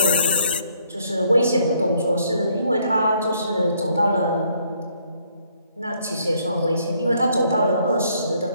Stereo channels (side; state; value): both; inverted; correlation -0.68